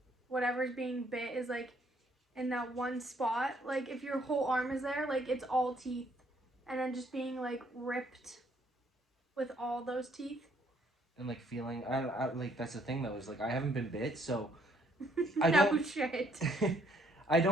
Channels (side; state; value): both; normal; correlation 0.67